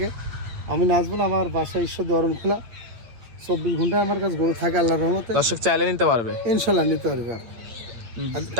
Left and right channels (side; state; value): left; late; 8.6 ms